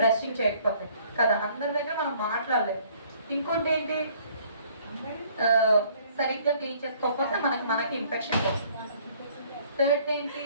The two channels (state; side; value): inverted; both; correlation -0.59